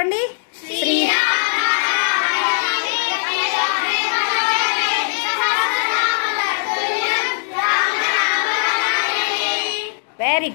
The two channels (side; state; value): right; silent; digital silence